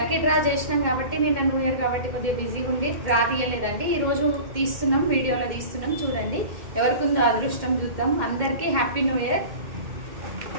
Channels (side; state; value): left; late; 2.1 ms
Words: డ్రా చేసినాం కాబట్టి నిన్న న్యూ ఇయర్ కాబట్టి కొద్దిగా బిజీగా ఉండి డ్రా తీయలేదండి. ఈరోజు తీస్తున్నాం, వీడియోలో తీస్తున్నాం. చూడండి ఎవరికి ఉందో అదృష్టం, చూద్దాం. అందరికీ happy new year.